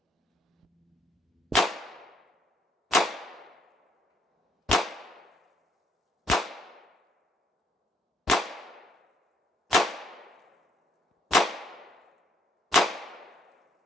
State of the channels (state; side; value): normal; both; correlation 0.68